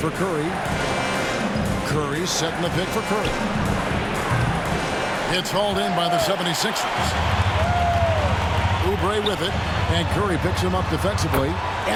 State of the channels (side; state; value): both; identical; correlation 1.00